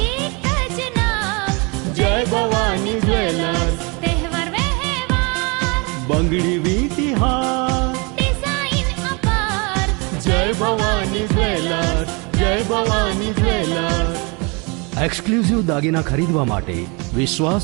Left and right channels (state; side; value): quieter; left; 30.1 dB